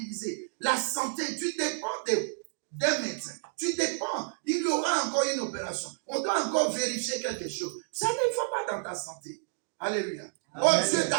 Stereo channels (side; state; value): left; silent; digital silence